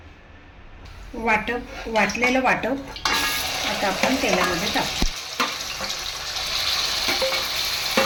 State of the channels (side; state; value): both; identical; correlation 1.00